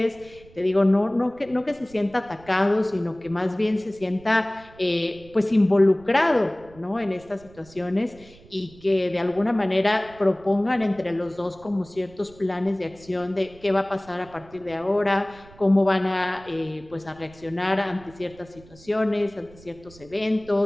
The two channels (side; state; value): right; noise; rumble, 23 dB below the sound